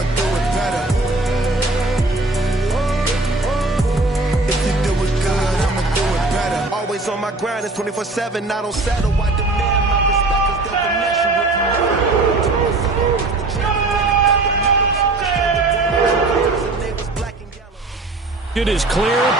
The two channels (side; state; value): left; quieter; 3.1 dB